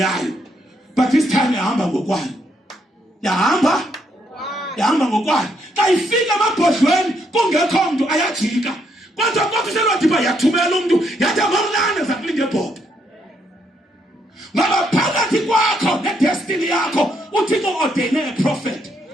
But this time yahamba ngokwayo. Yahamba ngokwayo. Xa ifika emabhodlweni kungekho mntu ayajika. Kodwa selwadiba yathumela umuntu yathi amamlane zakulinge ebhodo. Ngoba phakathi kwakho ne-destiny yakho uthixo ordene a prophet,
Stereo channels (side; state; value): both; normal; correlation 0.75